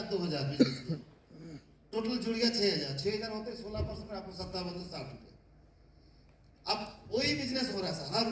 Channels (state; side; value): identical; both; correlation 1.00